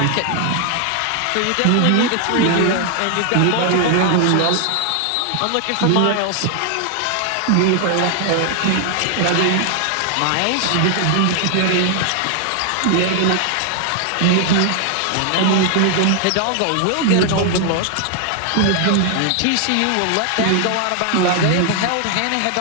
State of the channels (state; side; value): different; both; correlation 0.00